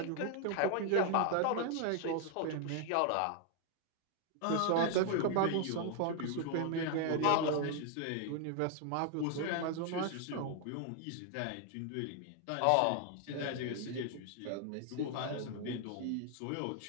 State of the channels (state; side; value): different; both; correlation 0.00